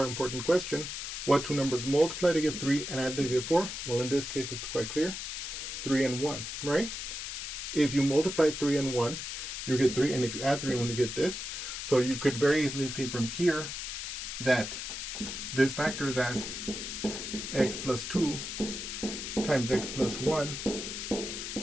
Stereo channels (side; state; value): left; noise; hiss, 6 dB below the sound